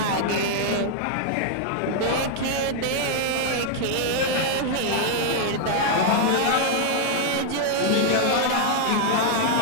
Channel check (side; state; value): both; different; correlation -0.01